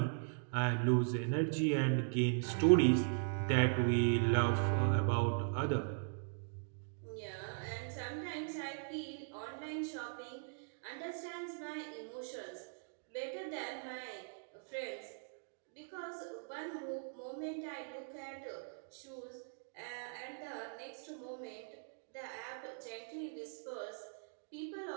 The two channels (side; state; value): left; silent; digital silence